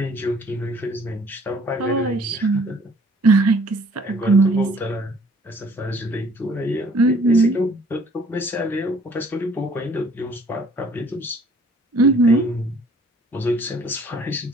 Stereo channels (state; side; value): normal; both; correlation 0.56